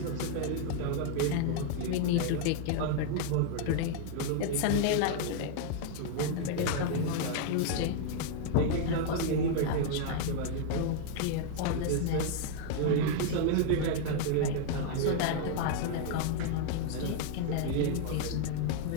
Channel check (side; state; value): both; different; correlation 0.00